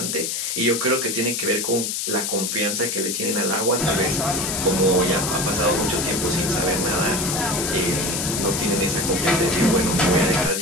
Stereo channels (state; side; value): noise; left; hiss, 2 dB below the sound